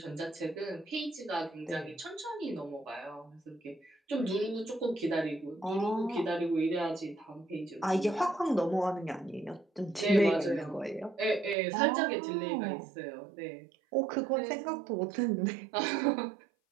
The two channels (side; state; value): left; drops out; at 11.6 s